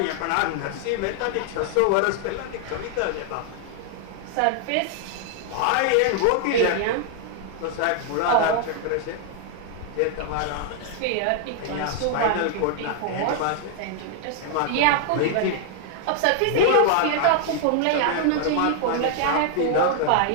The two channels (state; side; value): different; both; correlation 0.00